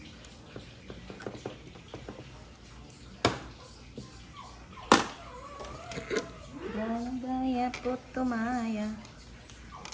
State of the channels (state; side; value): identical; both; correlation 1.00